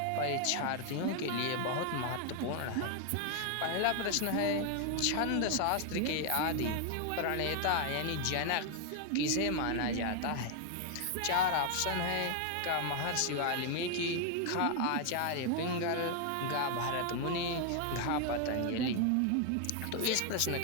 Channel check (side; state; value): both; different; correlation 0.00